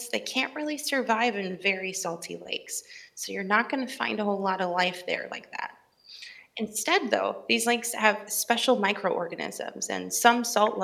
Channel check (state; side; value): identical; both; correlation 1.00